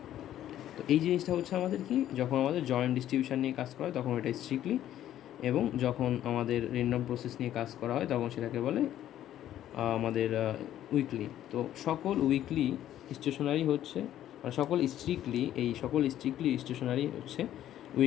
তো এই জিনিসটা হচ্ছে আমাদের কি, যখন আমাদের জয়েন্ট ডিস্ট্রিবিউশন নিয়ে কাজ করা হয় তখন এটা স্ট্রিক্টলি, এবং যখন আমাদের র্যান্ডম প্রসেস নিয়ে কাজ করা হয় তখন সেটাকে বলে আমাদের উইকলি। তো সকল উইকলি স্টেশনারি হচ্ছে, মানে সকল স্ট্রিক্টলি স্টেশনারি হচ্ছে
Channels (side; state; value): right; quieter; 12.0 dB